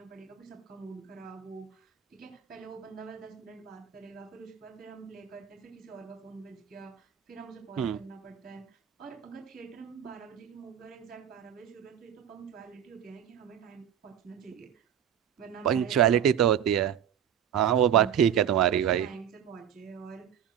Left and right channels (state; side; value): quieter; left; 9.6 dB